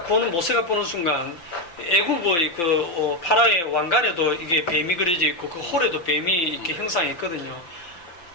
보는 모세가 보는 순간 애굽의 그 파라의 왕관에도 이게 뱀이 그려져 있고 그 홀에도 뱀이 이렇게 형상이 있거든요.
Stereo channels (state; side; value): late; right; 5.9 ms